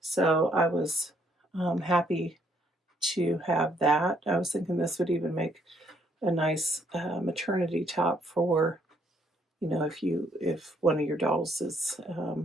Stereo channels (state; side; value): normal; both; correlation 0.69